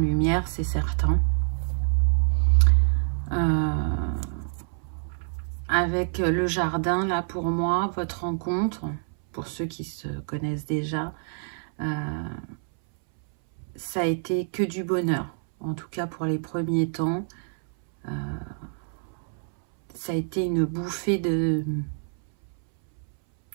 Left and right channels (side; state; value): left; silent; 60 dB below the other